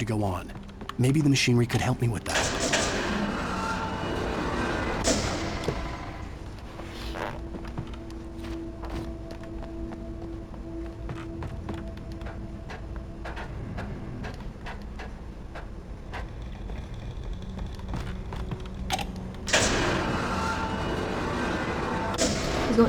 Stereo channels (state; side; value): identical; both; correlation 1.00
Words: go on. Maybe the machinery could help me with that. It's